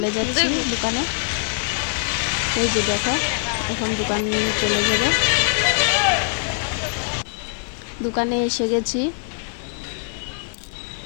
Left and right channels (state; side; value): silent; right; 64 dB below the other